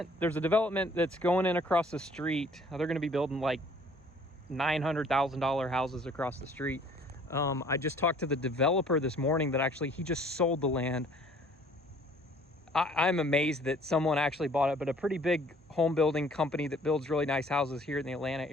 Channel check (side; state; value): both; normal; correlation 0.55